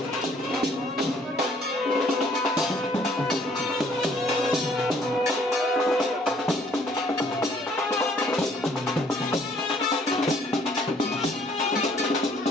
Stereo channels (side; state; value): both; normal; correlation 0.62